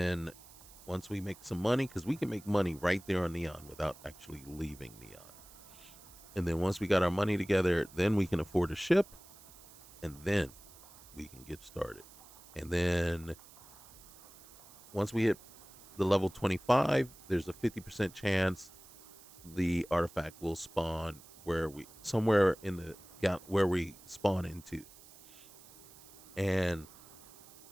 once we make some money, because we can make money right there on Neon without actually leaving Neon. And then once we got our money together, then we can afford a ship, and then we can get started. And then once we hit the level 25, there's a 50% chance the artifact will spawn somewhere in the where we spawn into, and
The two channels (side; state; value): right; noise; hiss, 20 dB below the sound